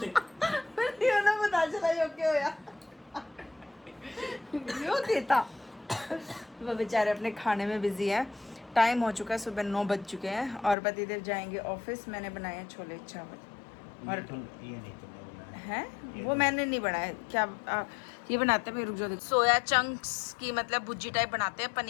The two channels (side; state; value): right; drops out; at 10.8 s